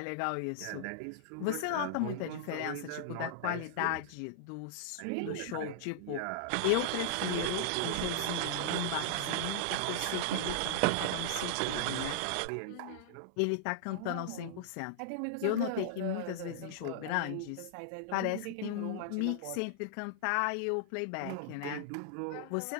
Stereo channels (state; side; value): different; both; correlation -0.01